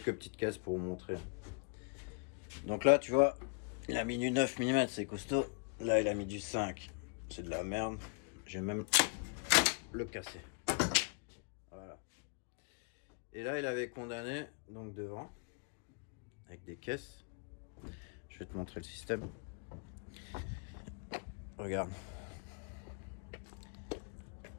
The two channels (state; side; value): quieter; right; 35.2 dB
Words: petites caisses pour vous montrer. Donc là, tu vois, il a mis du 9 mm, c'est costaud. Là, il a mis du 5. C'est de la merde. J'ai même le cassé. Voilà. Et là, il avait condamné, donc devant, avec des caisses. Je vais te montrer le système. Regarde.